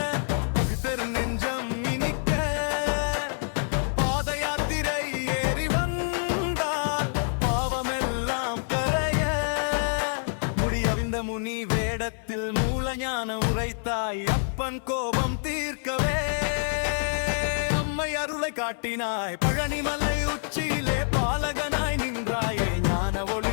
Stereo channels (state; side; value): silent; right; 60 dB below the other